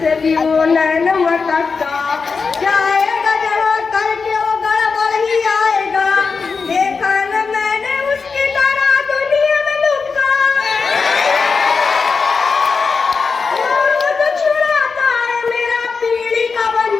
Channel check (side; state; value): right; quieter; 4.9 dB